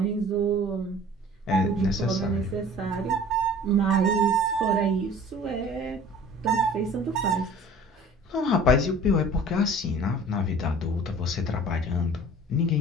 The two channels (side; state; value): both; normal; correlation 0.46